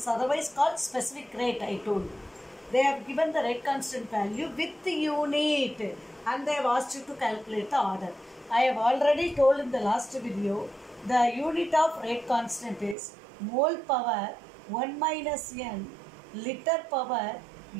otherwise called specific rate I told. They have given the rate constant value with the unit and they have asked you to calculate the order. I have already told in the last video, the unit of rate constant is mole power 1 minus n, liter power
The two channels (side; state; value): left; drops out; at 13.0 s